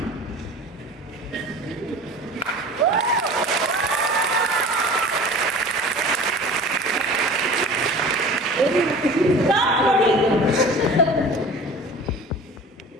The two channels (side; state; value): both; normal; correlation 0.40